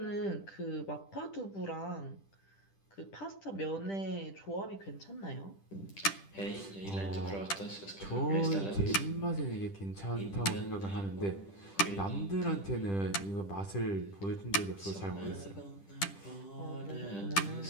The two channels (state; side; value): late; right; 10 ms